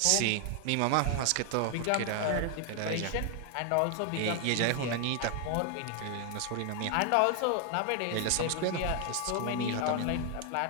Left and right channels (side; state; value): both; different; correlation 0.00